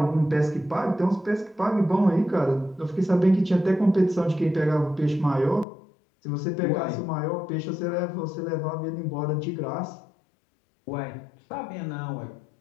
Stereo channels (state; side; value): drops out; right; at 5.7 s